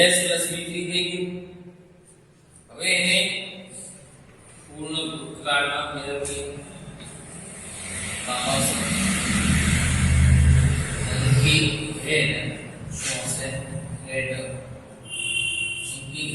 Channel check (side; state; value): both; identical; correlation 1.00